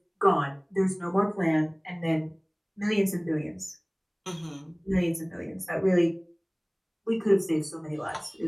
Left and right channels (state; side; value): identical; both; correlation 1.00